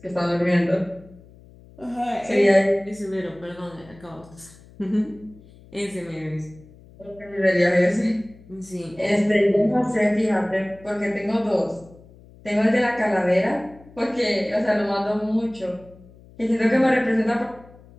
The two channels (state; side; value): noise; left; hum, 24 dB below the sound